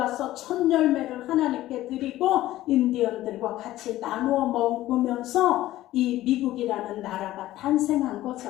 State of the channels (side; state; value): right; quieter; 15.2 dB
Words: 첫 열매를 하나님께 드리고 인디언들과 같이 나누어 먹으면서 이 미국이라는 나라가 탄생한